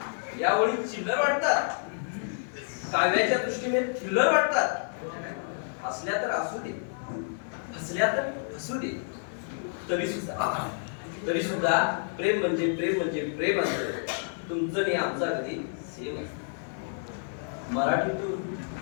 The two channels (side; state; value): right; silent; 58 dB below the other